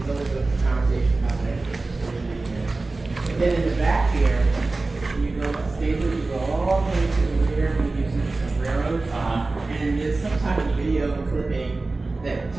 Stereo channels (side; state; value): left; quieter; 3.4 dB